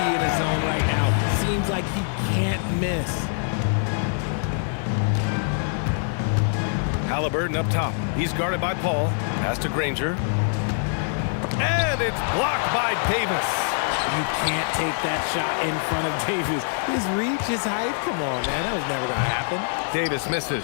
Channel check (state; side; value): silent; right; digital silence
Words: in his zone right now. Seems like he can't miss. Halliburton up top. He's guarded by Paul. Pass to Granger. And it's blocked by Davis. You can't take that shot in front of Davis. His reach, his height. Come on, man. That was never going to happen. Davis misses.